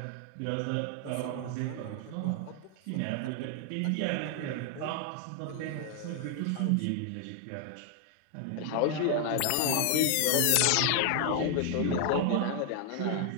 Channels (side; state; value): both; different; correlation 0.00